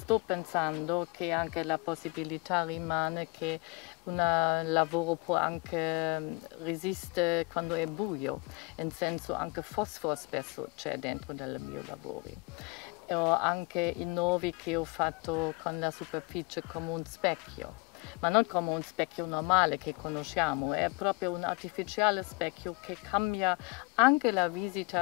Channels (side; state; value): right; quieter; 26.3 dB